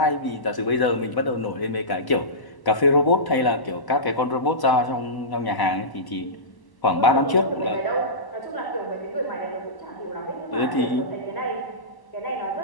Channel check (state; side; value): late; right; 1.0 ms